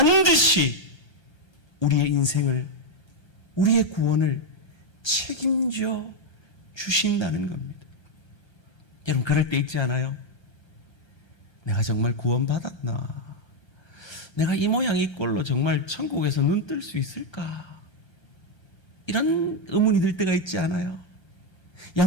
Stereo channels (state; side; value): late; right; 1.3 ms